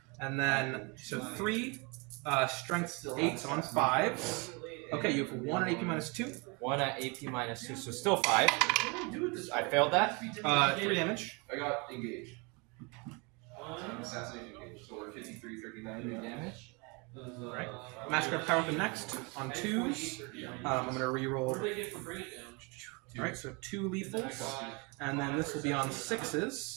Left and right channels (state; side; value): quieter; left; 30.2 dB